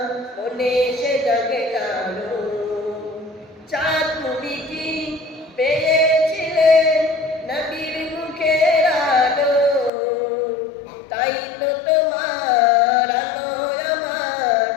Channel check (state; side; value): drops out; right; at 9.9 s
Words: মনে সে জাগে জালো। চাঁদ তুমি কি পেয়েছিলে নবীর মুখের আলো, তাই তো তোমার আলো আমার